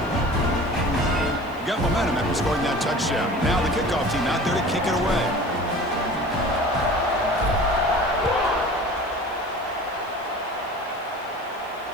Got momentum after scoring that touchdown. Now the kickoff team out there to kick it away.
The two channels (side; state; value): left; noise; hiss, 27 dB below the sound